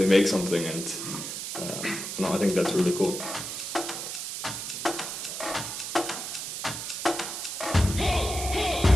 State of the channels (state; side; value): noise; right; hiss, 5 dB below the sound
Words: make something, and I think that's really cool.